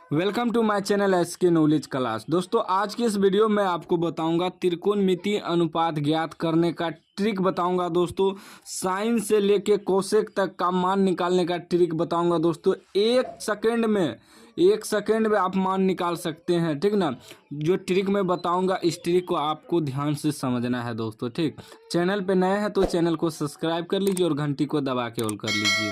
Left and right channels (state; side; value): identical; both; correlation 1.00